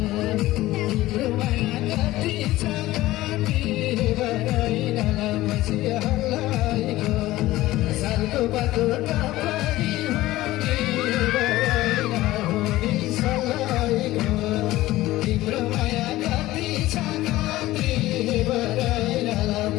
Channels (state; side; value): quieter; right; 16.9 dB